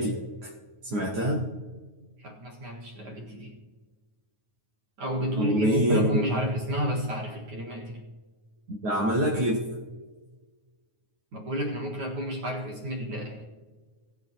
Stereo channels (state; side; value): late; left; 9.4 ms